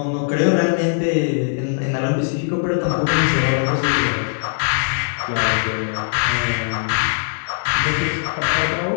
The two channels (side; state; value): right; silent; digital silence